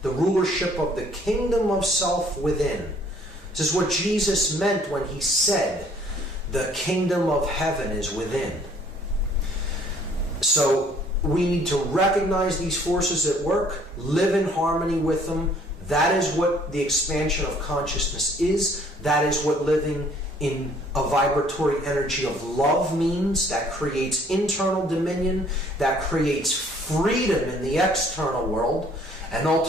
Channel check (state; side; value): normal; both; correlation 0.59